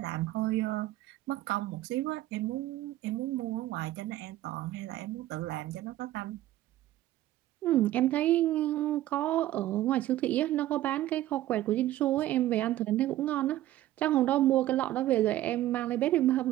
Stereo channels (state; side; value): quieter; left; 14.6 dB